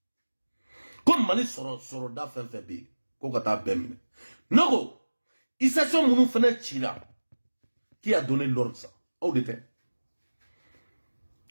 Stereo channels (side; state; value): both; inverted; correlation -1.00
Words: Comme mani soro da fenfebe, ko kata bemine. Nogo, il s'est son mounou fene tira. Qui a donné l'ordre ça? Où était?